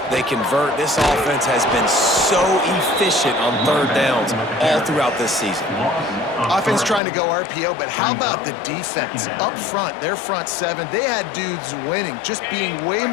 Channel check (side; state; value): right; drops out; at 7.0 s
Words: They convert. This offense has been so efficient on third downs all throughout this season. Offense trying to go RPO, but how about the defense? Up front, their front seven, they had dudes winning, just being way